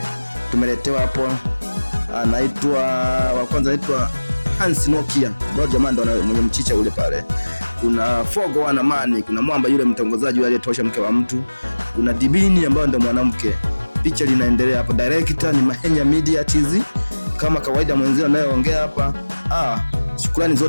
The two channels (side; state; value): both; inverted; correlation -1.00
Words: tumeletewa hapo, anaitwa wa kwanza anaitwa Hans Nokia, ndio jamaa ndo mwenye mchicha ule pale. Kuna Fogo wana Mani, kuna Mwamba yule mtongozaji yule aliyetosha mke wa mtu, kuna Dibini ambaye ndo mwanamke. Picha linaendelea hapo. Director ni Mahenya Media TZ. Kama kawaida mwenzio anayeongea hapa, shukrani